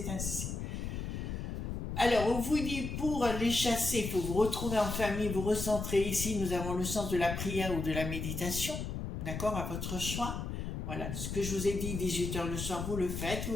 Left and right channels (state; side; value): noise; left; rumble, 4 dB below the sound